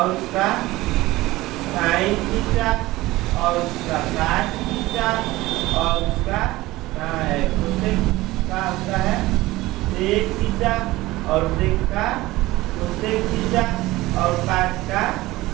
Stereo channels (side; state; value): left; quieter; 18.6 dB